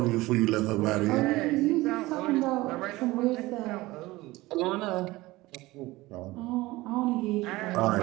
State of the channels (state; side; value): quieter; left; 19.6 dB